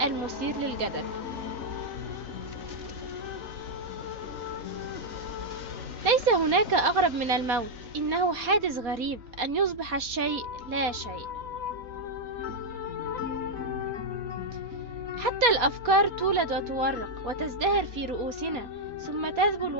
المثير للجدل. ليس هناك أغرب من الموت، إنه حادث غريب أن يصبح الشيء لا شيء. حتى الأفكار تولد وتورق وتزدهر في رؤوسنا ثم تذبل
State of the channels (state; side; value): late; left; 4.2 ms